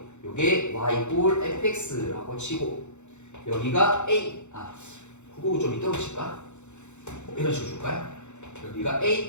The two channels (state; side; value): late; right; 0.83 ms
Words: 요게 y = fx라고 치고 여기가 a 그거 좀 이따로 칠까? 이런 식으로 줄까요? 여기가